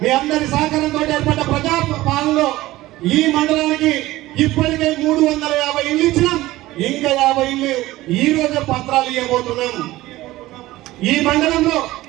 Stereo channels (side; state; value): left; quieter; 17.3 dB